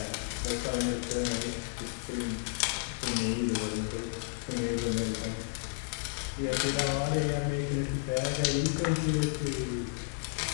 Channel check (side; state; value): right; silent; 56 dB below the other